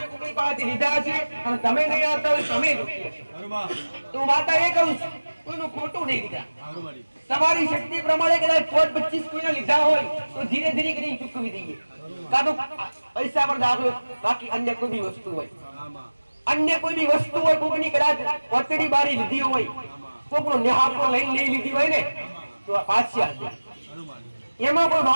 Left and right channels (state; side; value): inverted; both; correlation -1.00